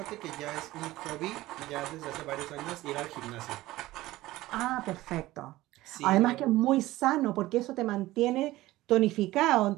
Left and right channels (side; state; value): left; quieter; 17.3 dB